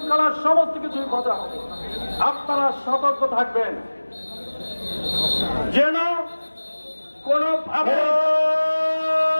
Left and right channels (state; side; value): inverted; both; correlation -1.00